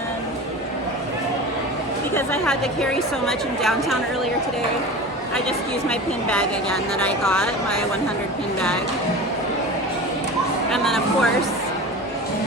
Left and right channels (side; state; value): both; normal; correlation 0.33